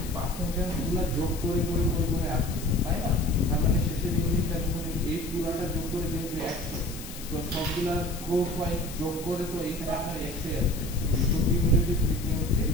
পার্সেন্টেজগুলো যোগ করে করে করে করে আসতেছেন, তাই না? তার মানে শেষের ইউনিটটা যখন এই পুরাটা যোগ করে যেহেতু 100, সো সবগুলা ক্রস ওয়াইজ যোগ করে তো এখানে আপনার 100 আসবে। তো কিউমুলেটিভ ফ্রিকোয়েন্সি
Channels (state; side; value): noise; left; hiss, 13 dB below the sound